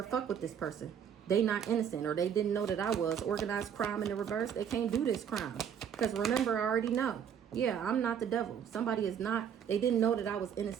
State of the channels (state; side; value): quieter; left; 8.3 dB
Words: fuck with this person. They not innocent, or they didn't know that I was. Organized crime in the reverse. They can't do this crime. Because remember, I already know. Yeah, I'm not the devil. Somebody is not. They didn't know that I was